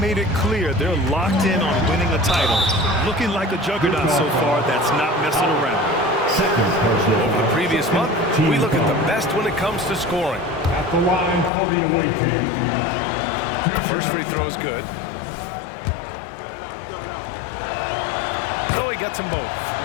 it clear they're locked in on winning a title. Looking like a juggernaut so far that's not messing around. Over the previous month, we look at the best when it comes to scoring. At the line for the away team. First free throw is good. So he gets them both.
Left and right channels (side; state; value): right; drops out; at 11.5 s